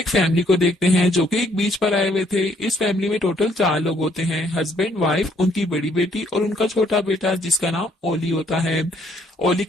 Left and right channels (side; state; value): both; normal; correlation 0.66